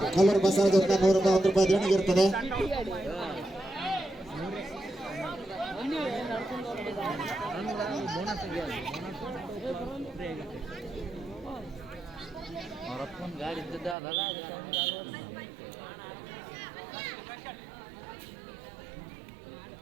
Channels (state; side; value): drops out; left; at 14.0 s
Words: ಕಲ್ಲೂರು ಬಸವದಿಂದ 100 ರೂಪಾಯಿ ದೇಣಿಗೆ ಇರ್ತದೆ. ಗಾಡಿ ಇದ್ದದಲ್ಲ